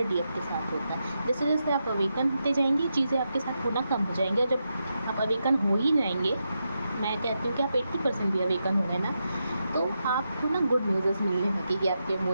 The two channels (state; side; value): inverted; both; correlation -0.86